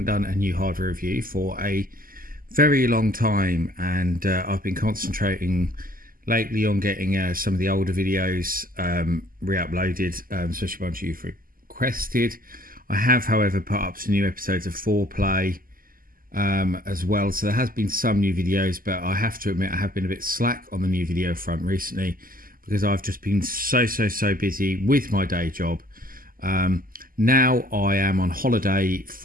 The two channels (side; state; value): left; late; 0.41 ms